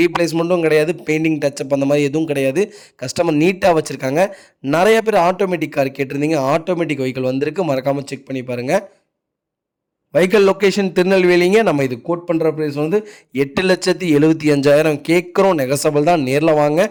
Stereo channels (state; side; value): identical; both; correlation 1.00